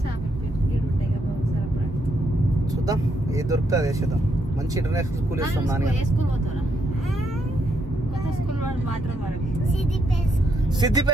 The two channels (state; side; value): normal; both; correlation 0.76